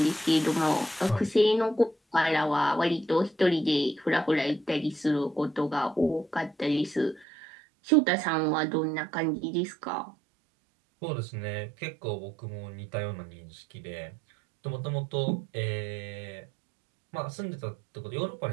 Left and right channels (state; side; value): drops out; left; at 7.2 s